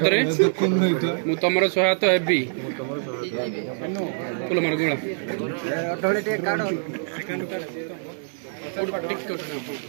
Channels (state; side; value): silent; left; 61 dB below the other